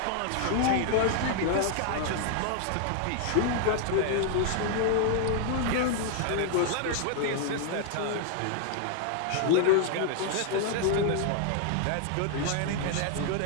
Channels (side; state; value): both; different; correlation 0.00